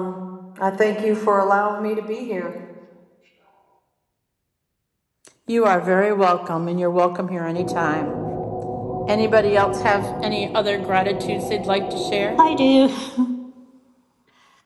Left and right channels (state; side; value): identical; both; correlation 1.00